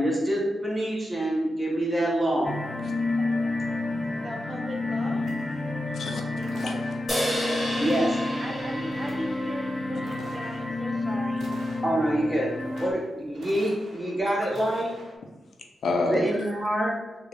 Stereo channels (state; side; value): normal; both; correlation 0.89